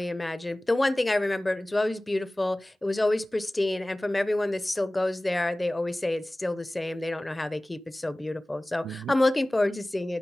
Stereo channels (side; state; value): both; normal; correlation 0.98